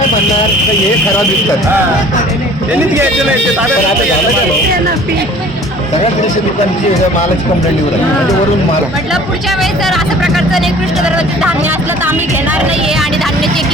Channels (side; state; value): both; normal; correlation 0.49